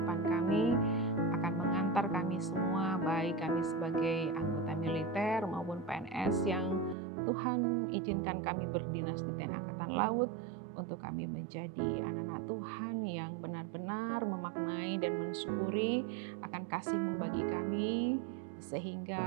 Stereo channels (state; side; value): drops out; left; at 7.0 s